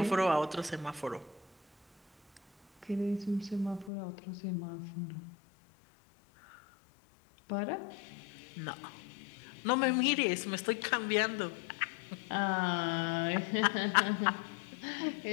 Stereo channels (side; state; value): right; drops out; at 3.9 s